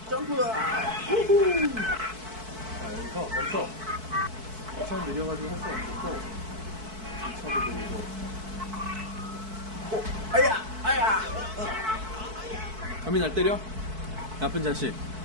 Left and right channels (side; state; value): left; late; 4.6 ms